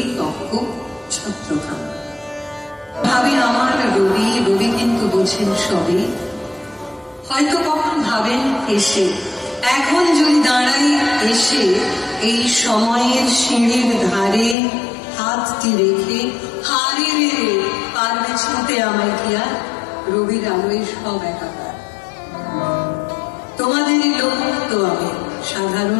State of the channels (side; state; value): right; drops out; at 14.6 s